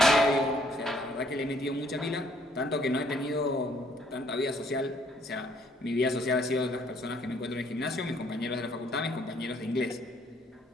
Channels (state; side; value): normal; both; correlation 0.65